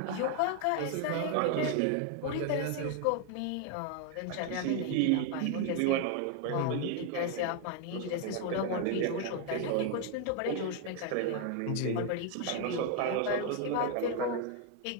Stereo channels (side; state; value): both; different; correlation 0.01